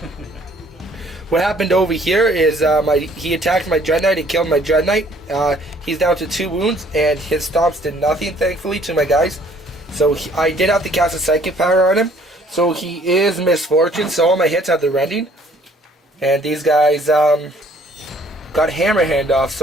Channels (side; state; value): both; normal; correlation 0.59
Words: What happened over here is he attacked my Dread Knight and killed my Dread Knight. He's down to 2 wounds, and his stomps did nothing, thankfully, to my guys. So I did have to cast a Psychic Power on him. So he is Misfortune, so all my hits have the rending. And these guys got Hammer Hand off,